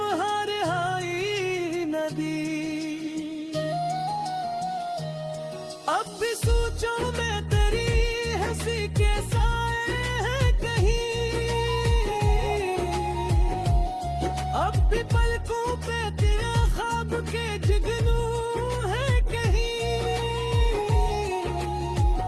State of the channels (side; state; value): both; identical; correlation 1.00